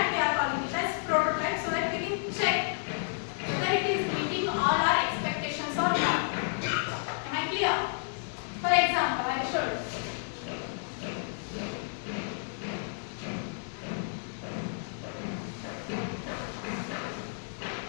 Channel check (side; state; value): right; silent; digital silence